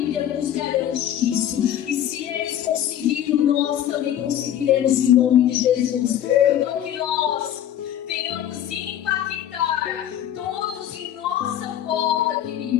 nos garante isso. E se eles conseguiram, nós também conseguiremos em nome de Jesus. Então que nós venhamos impactar todos em nossa volta,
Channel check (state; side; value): quieter; right; 10.9 dB